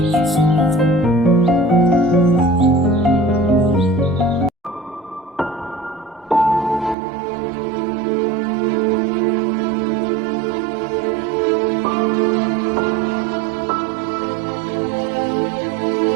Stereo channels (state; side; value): drops out; left; at 7.0 s